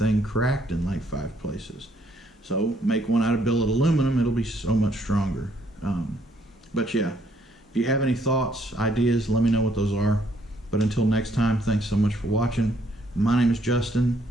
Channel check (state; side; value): normal; both; correlation 0.68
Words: cracked in like 5 places. So make one out of billet aluminum, it'll be so much stronger. But yeah, if you have any thoughts, ideas, let me know what those are. But until next time, thanks so much for watching. My name is Justin,